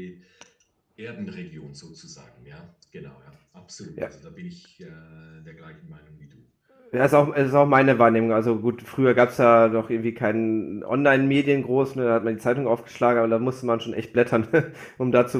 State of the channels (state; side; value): identical; both; correlation 1.00